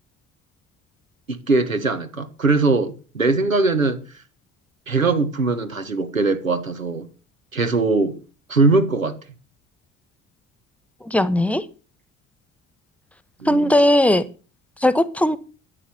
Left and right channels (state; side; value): normal; both; correlation 0.56